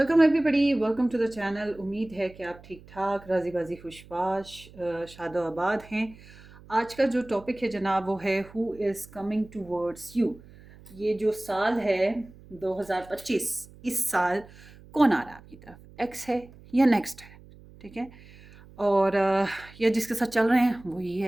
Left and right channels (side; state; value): right; noise; hum, 22 dB below the sound